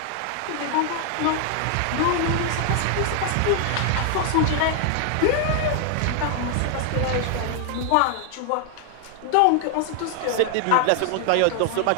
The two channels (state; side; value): different; both; correlation 0.00